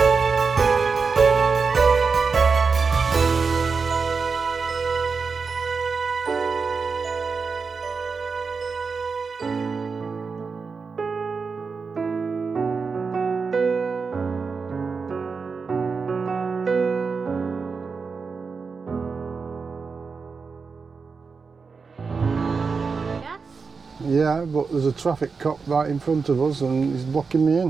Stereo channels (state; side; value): quieter; left; 5.0 dB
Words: Yeah, but there's a traffic cop right in front of us and he's blocking me